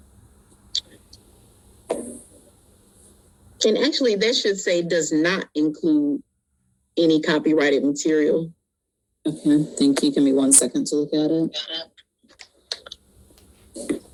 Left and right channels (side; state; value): both; identical; correlation 1.00